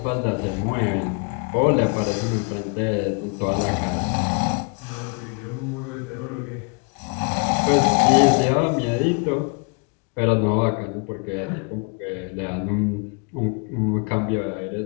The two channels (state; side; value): quieter; right; 35.4 dB